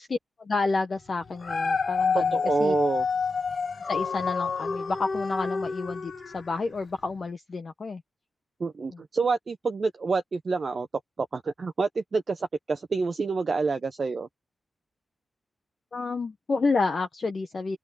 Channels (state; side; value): normal; both; correlation 0.88